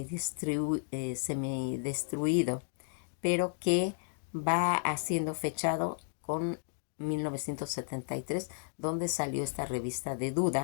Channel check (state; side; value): silent; right; digital silence